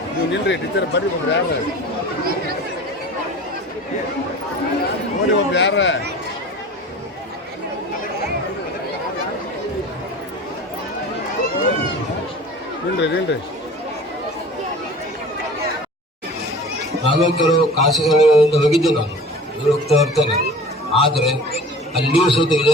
ನೀವು ನಿಲ್ರಿ ಟೀಚರ್ ಬರ್ರಿ. ಒಬ್ರು ಯಾರ ನೋಡಿ, ಒಬ್ರು ಯಾರ ನಿಲ್ರಿ. ನಾನು ಕೆಲವು ಖಾಸಗಿಗಳಿಂದ ಹೋಗಿದ್ದೆ, ನಾನು ಹೋಗ್ತಾ ಇರ್ತೇನೆ. ಆದರೆ ಅಲ್ಲಿಯೂ ಸಹಿತ ಇದೇ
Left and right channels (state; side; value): normal; both; correlation 0.40